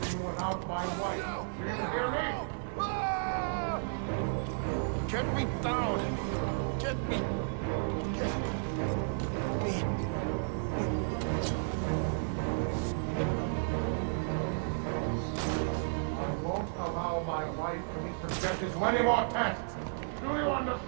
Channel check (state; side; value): silent; left; digital silence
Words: without my wife. Do you hear me? Get me down! Get me! Get me! I won't allow my wife to be subjected to any more tests. Do you